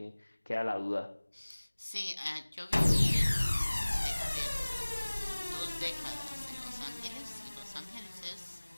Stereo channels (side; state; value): both; inverted; correlation -1.00